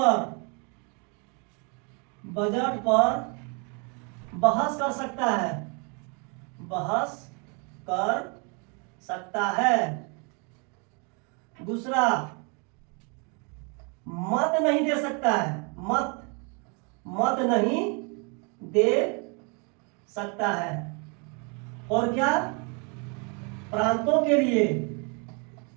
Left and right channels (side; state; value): left; quieter; 34.5 dB